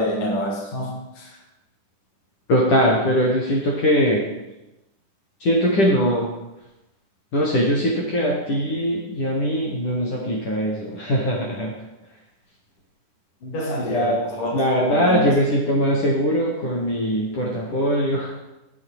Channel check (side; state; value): right; late; 10 ms